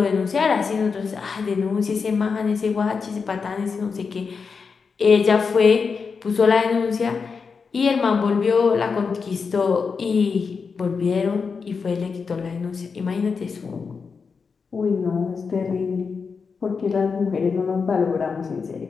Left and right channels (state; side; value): quieter; right; 5.3 dB